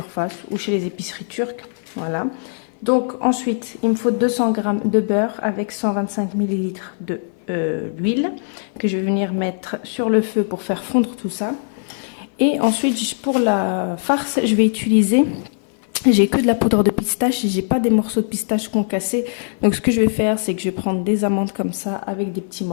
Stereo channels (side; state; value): right; silent; 56 dB below the other